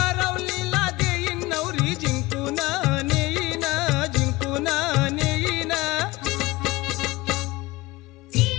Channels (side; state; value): right; quieter; 21.0 dB